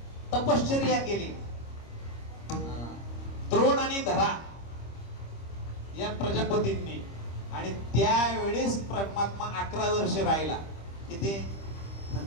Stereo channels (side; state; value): right; late; 25 ms